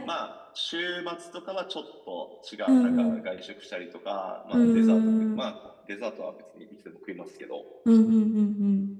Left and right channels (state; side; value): identical; both; correlation 1.00